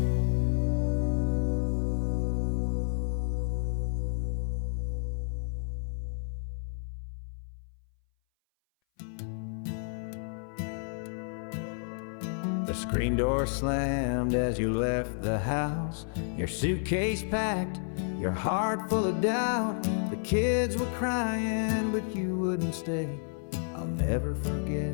The screen door slammed as you left the house, your suitcase packed, your heart full of doubt. The kids were crying, but you wouldn't stay. I'll never forget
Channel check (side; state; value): right; silent; 57 dB below the other